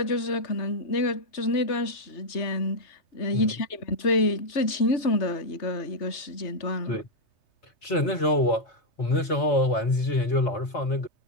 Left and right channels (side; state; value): right; late; 3.3 ms